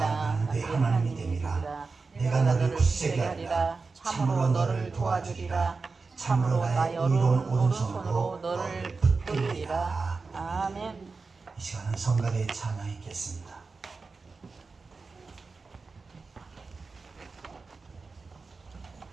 내 하나님이 됨이라. 내가 너를 굳세게 하리라. 참으로 너를 도와주리라. 참으로 나의 의로운 오른손으로 너를 붙들리리라. 아멘. 이 시간은 성가대의 찬양이 있겠습니다.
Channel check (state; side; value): quieter; left; 4.2 dB